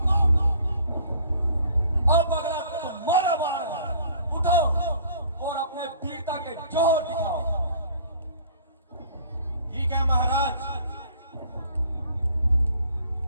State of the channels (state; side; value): inverted; both; correlation -0.53